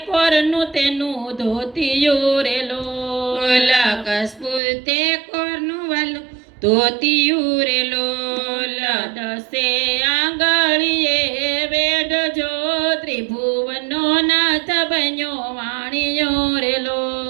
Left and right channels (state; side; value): drops out; left; at 4.6 s